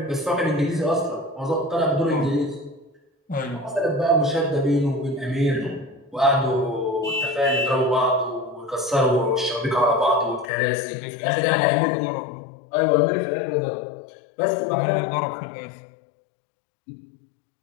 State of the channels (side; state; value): right; drops out; at 10.5 s